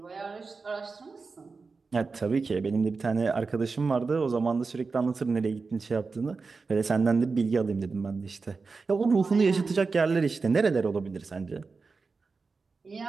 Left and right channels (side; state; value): left; quieter; 4.4 dB